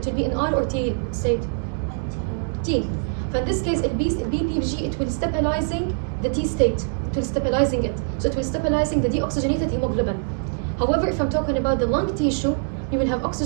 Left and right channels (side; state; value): left; silent; digital silence